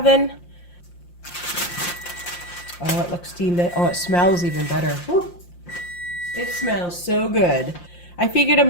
Oh, it looks steamed. Oh, it smells even better. Woo. It smells so good. I figured I'm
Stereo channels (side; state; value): right; late; 5.7 ms